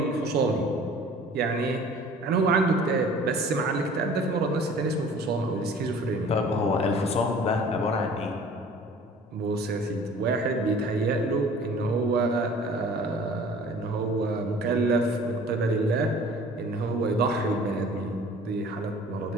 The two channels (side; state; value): both; normal; correlation 0.48